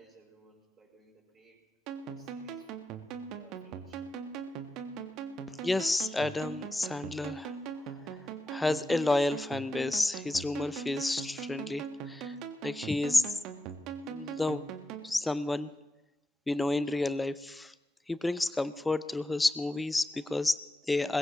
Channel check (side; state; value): both; normal; correlation 0.89